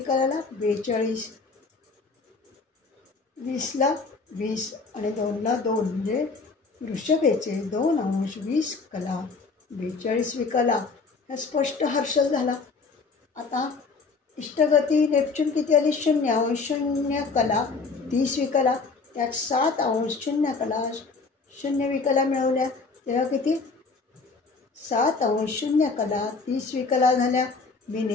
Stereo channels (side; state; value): right; quieter; 4.3 dB